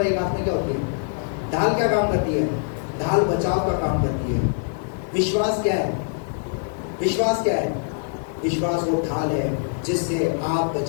एक हाथ में क्या होती है? ढाल क्या काम करती है? ढाल बचाव का काम करती है। विश्वास क्या है? विश्वास क्या है? विश्वास वो ढाल है जिससे आप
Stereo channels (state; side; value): silent; right; digital silence